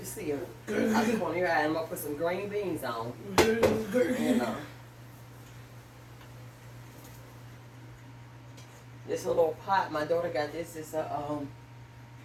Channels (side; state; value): both; identical; correlation 1.00